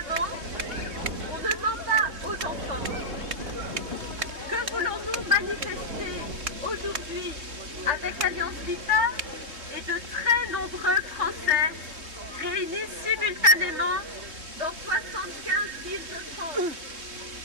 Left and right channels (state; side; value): late; left; 3.5 ms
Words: on ne ment pas aux enfants. Que voulons-nous manifester aujourd'hui avec Alliance Vita et de très nombreux Français réunis simultanément dans 75 villes de France?